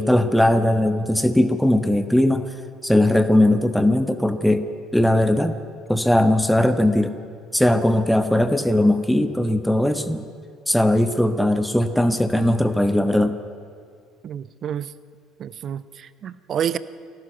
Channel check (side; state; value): both; normal; correlation 0.94